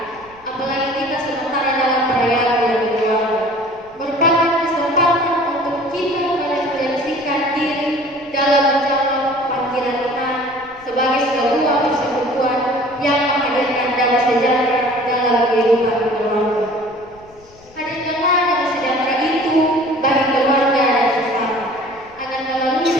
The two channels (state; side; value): noise; left; rumble, 27 dB below the sound